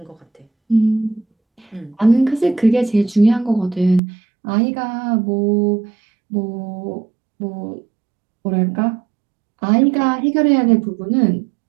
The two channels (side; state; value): left; drops out; at 4.0 s